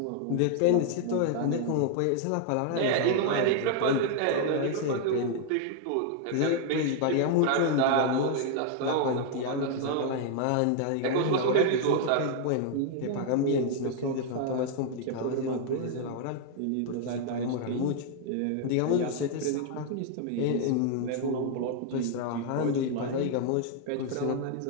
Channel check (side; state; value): both; different; correlation 0.00